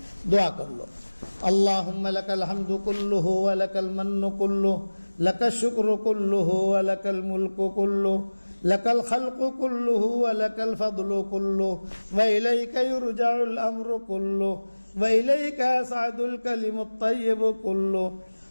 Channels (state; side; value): inverted; both; correlation -1.00